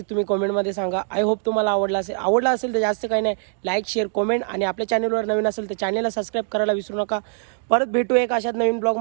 तुम्ही कमेंटमध्ये सांगा. आय होप तुम्हाला आवडला असेल तर जास्त काही नाही, लाईक शेअर कमेंट आणि आपल्या चॅनलवर नवीन असेल तर चॅनलला सबस्क्राईब करायला विसरू नका. परत भेटू एक अशाच नवीन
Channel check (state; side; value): silent; left; digital silence